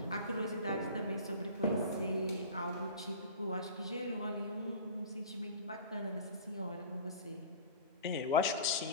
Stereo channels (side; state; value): both; inverted; correlation -0.38